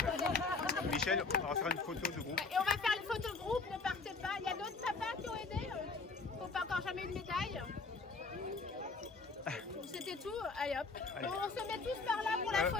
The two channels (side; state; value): right; quieter; 4.1 dB